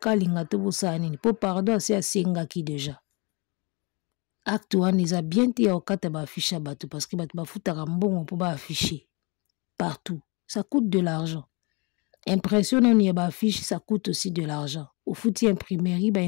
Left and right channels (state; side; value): quieter; right; 29.6 dB